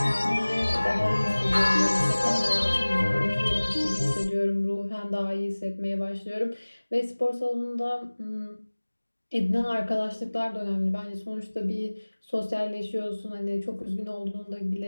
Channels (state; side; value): inverted; both; correlation -1.00